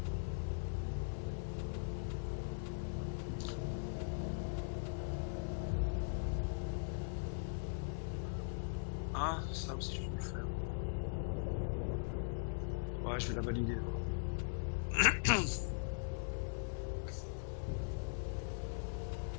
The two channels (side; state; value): right; silent; digital silence